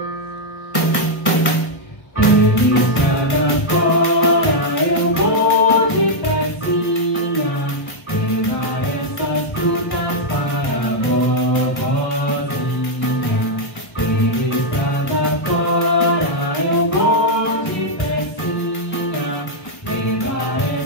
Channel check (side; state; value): right; late; 1.2 ms